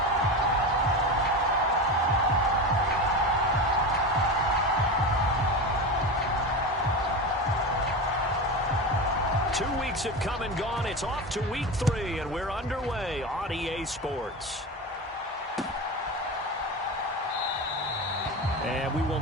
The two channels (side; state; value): both; normal; correlation 0.23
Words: Have come and gone. It's off to week 3, and we're underway on EA Sports. And we